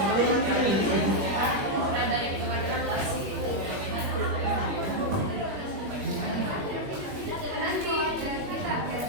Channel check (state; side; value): late; left; 21 ms